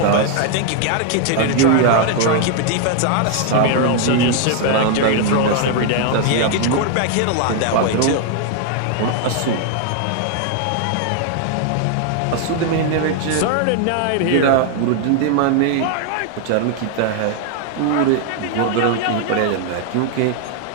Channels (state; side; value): different; both; correlation 0.00